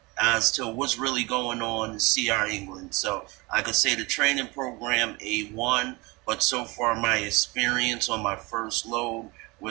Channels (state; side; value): quieter; left; 24.9 dB